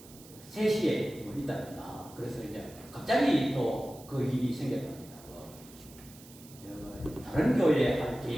3시에 있답니다. 그래서 이제 갑자기 또 그 일이 생겼답니다. 다른 교회에 할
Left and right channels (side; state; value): right; noise; hiss, 20 dB below the sound